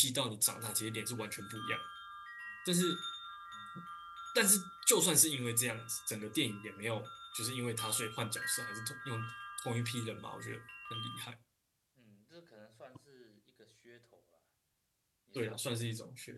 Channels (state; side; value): identical; both; correlation 1.00